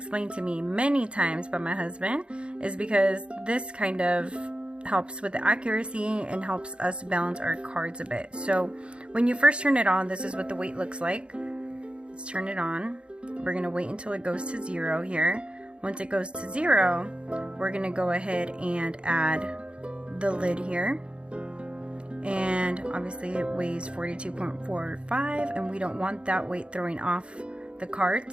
to me many times by my husband, is because this kind of helps with the accuracy and helps us balance our cards a bit. So when you first turn it on, this is what the weight looks like. Let's turn it on. We're gonna wait until it goes to 0 here. Once it goes to 0, we're gonna go ahead and add the lid here. And obviously it weighs 42.45, and we don't want that weight throwing off the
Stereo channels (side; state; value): left; late; 0.057 ms